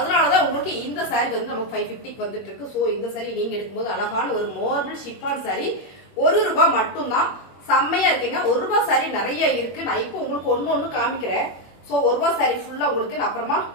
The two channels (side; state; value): right; late; 21 ms